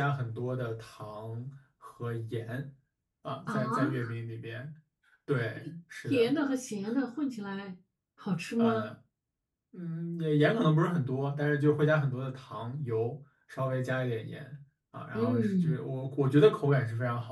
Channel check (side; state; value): both; identical; correlation 1.00